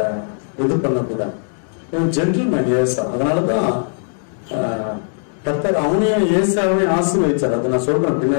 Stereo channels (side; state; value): right; silent; 67 dB below the other